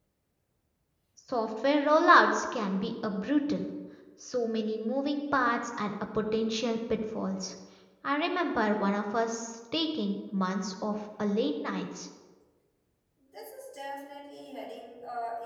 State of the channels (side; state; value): both; identical; correlation 1.00